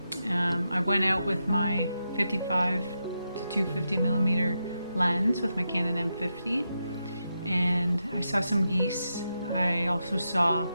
I went out with my 55-250mm lens with my Canon M50, and I saw some geese. I also saw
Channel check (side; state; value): both; inverted; correlation -0.86